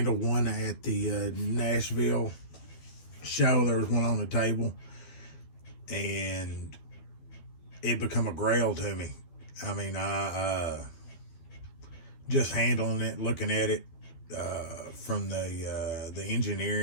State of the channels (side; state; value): right; late; 12 ms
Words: one at the Nashville show. There was one on the table, and it become a grail to me. I mean, I just handling it, looking at it from the